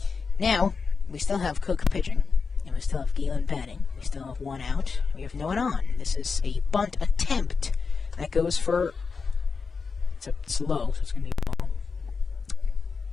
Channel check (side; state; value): right; quieter; 4.9 dB